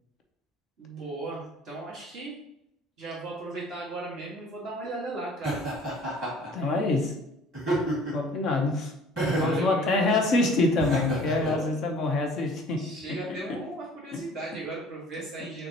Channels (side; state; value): both; normal; correlation 0.51